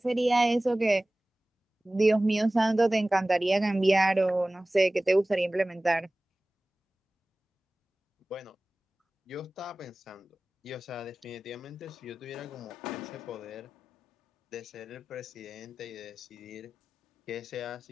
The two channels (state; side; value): normal; both; correlation 0.98